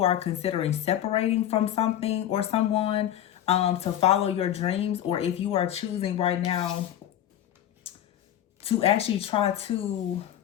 are considering separating from something or someone to follow your dreams, or if you are choosing right now to actually try to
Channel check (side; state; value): right; quieter; 11.5 dB